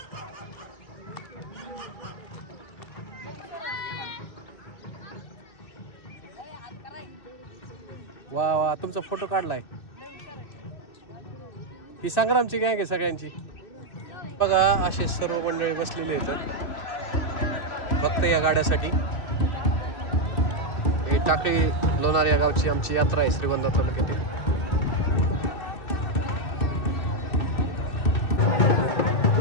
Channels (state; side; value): late; right; 2.6 ms